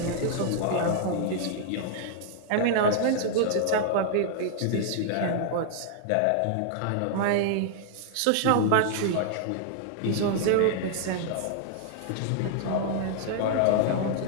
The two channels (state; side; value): different; both; correlation -0.01